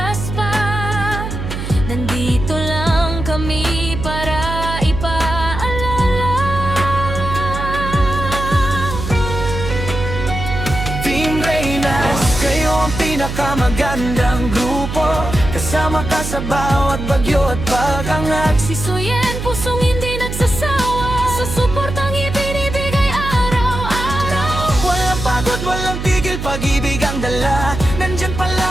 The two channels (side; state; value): right; noise; hum, 6 dB below the sound